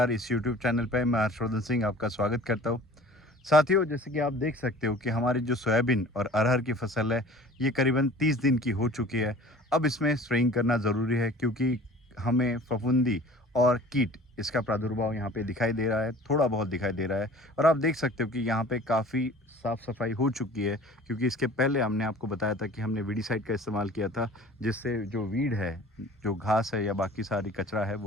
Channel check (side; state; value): both; normal; correlation 0.45